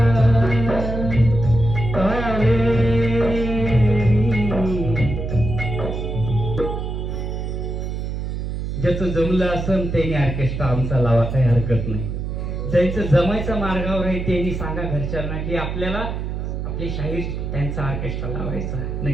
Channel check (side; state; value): right; noise; hum, 4 dB below the sound